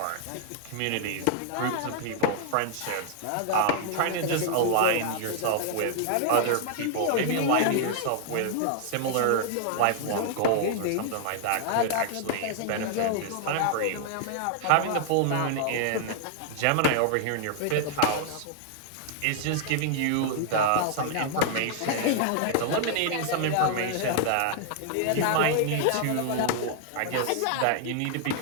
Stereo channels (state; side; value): different; both; correlation 0.00